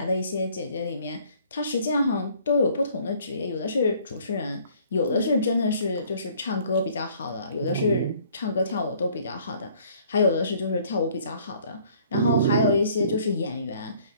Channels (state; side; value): inverted; both; correlation -0.58